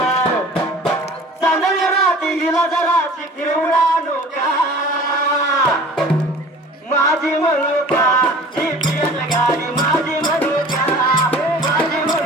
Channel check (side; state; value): both; normal; correlation 0.45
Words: चांदण्या राती हिला जराशी फिरवून आणू का माझी म्हणू का ही पियत गाडी माझी म्हणू का माझी